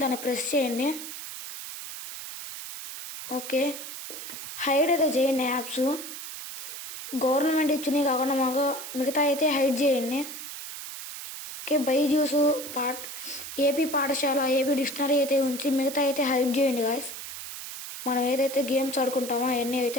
దాన్ని ప్రెస్ చేయండి. ఓకే, హైడ్ అయితే చేయండి యాప్స్. గవర్నమెంట్ ఇచ్చినవి కాకుండా మిగతా అయితే హైడ్ చేయండి. ఓకే, బైజూస్ ఏపీ పాఠశాల, ఏపీ డిక్షనరీ అయితే ఉంచి మిగతా అయితే హైడ్ చేయండి గాయస్. మనం ఏదైతే గేమ్స్ ఆడుకుంటామో అవన్నీ అయితే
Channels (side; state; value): right; noise; hiss, 9 dB below the sound